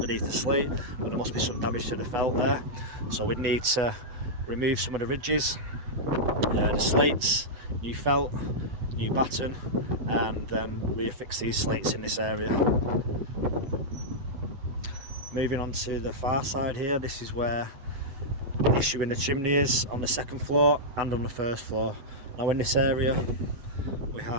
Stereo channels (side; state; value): left; late; 8.1 ms